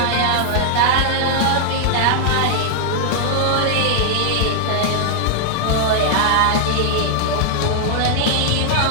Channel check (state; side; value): different; both; correlation -0.01